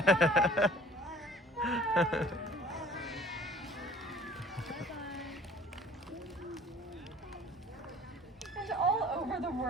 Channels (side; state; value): both; normal; correlation 0.51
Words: Bye. And all over the